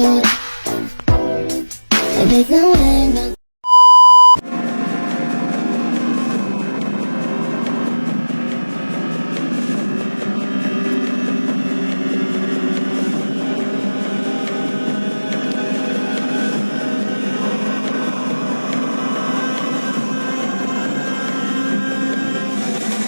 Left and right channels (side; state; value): both; inverted; correlation -1.00